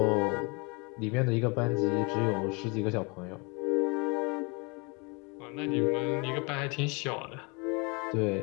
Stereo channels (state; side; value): quieter; right; 30.5 dB